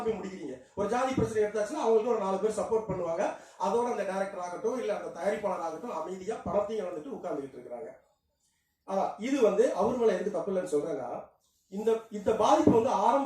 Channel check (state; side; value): identical; both; correlation 1.00